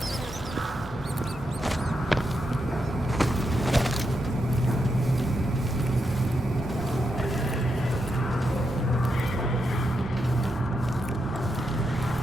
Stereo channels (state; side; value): normal; both; correlation 0.84